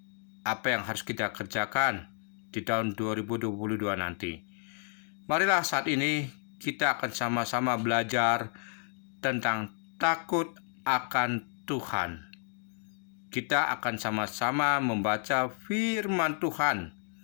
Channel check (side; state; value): right; silent; 57 dB below the other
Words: Apa yang harus kita kerjakan di tahun 2022 nanti? Marilah saat ini kita akan sama-sama belajar tentang takut akan Tuhan. Kita akan sama-sama membaca firman Tuhan